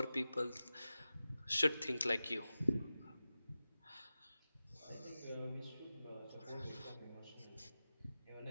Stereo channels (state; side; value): inverted; both; correlation -0.94